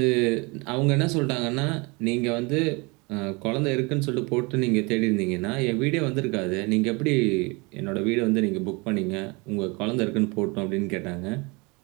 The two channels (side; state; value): left; quieter; 27.7 dB